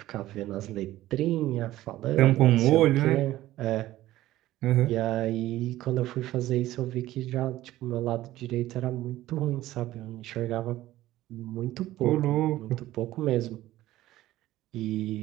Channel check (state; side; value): quieter; left; 15.3 dB